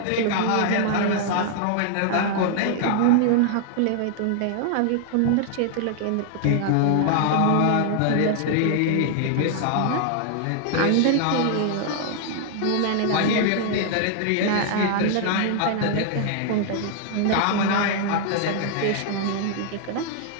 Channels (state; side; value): different; both; correlation 0.00